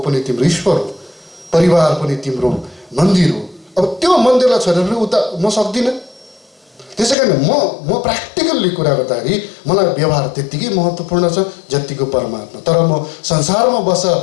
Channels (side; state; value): right; drops out; at 7.2 s